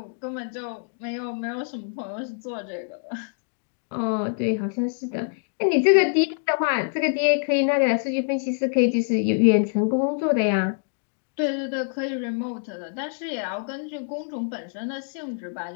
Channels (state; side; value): silent; right; digital silence